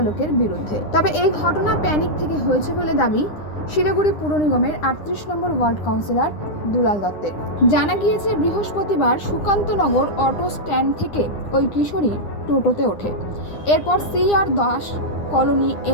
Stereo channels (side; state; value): right; late; 9.8 ms